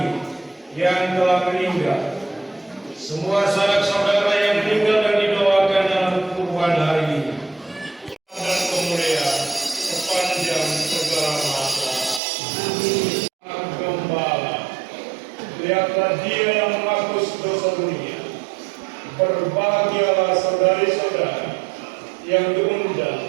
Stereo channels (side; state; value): left; drops out; at 12.2 s